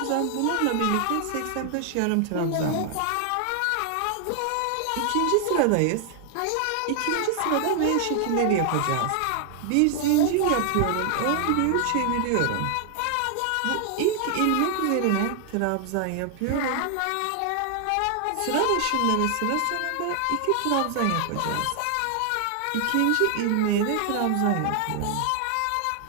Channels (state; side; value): different; both; correlation 0.00